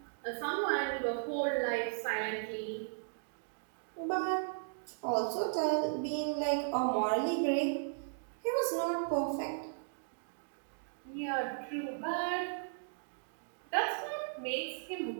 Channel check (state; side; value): silent; left; digital silence